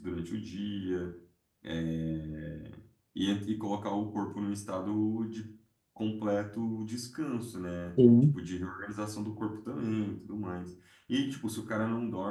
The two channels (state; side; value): identical; both; correlation 1.00